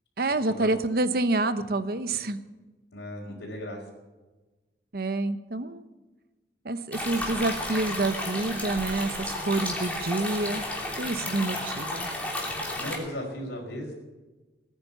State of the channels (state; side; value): normal; both; correlation 0.37